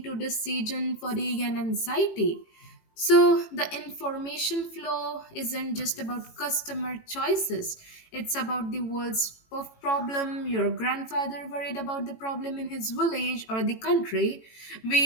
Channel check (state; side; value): late; right; 18 ms